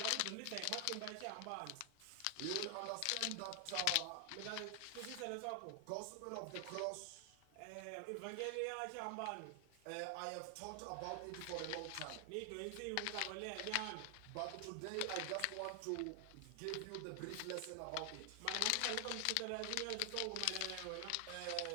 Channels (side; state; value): both; different; correlation 0.00